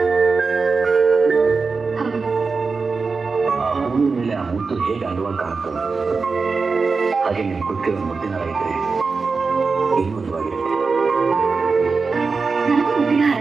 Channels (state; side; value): quieter; left; 4.5 dB